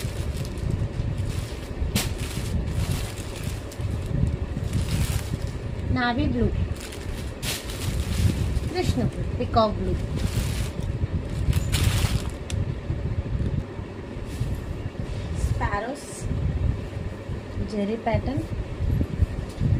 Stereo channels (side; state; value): both; identical; correlation 1.00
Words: navy blue, Krishna blue, peacock blue, sparrows zari pattern,